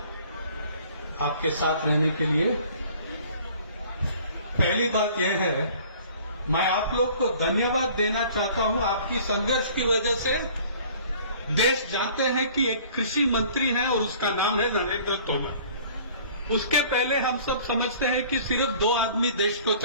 आपके साथ रहने के लिए। पहली बात यह है, मैं आप लोग को धन्यवाद देना चाहता हूं। आपकी संघर्ष की वजह से देश जानते हैं कि एक कृषि मंत्री है और उसका नाम है नरेंद्र तोमर। उसके पहले हम सब समझते हैं कि सिर्फ 2 आदमी देश को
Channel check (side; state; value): both; inverted; correlation -0.51